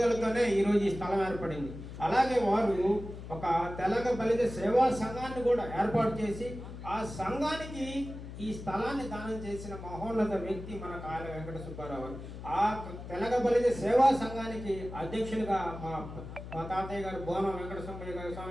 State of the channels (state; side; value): noise; left; hum, 11 dB below the sound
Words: ఈరోజు ఈ స్థలం ఏర్పడింది. అలాగే వారు ఒక తెలగ బలిజ సేవా సంఘాన్ని కూడా ఏర్పాటు చేసి ఆ సంఘానికి ఈ స్థలాన్ని దానం చేసిన మహోన్నత వ్యక్తి మన కాయల వెంకట సుబ్బారావు. ఆ తెలగ బలిజ సేవా సంఘానికి అధ్యక్షులుగా మా తాతయ్య గారు బోనం వెంకట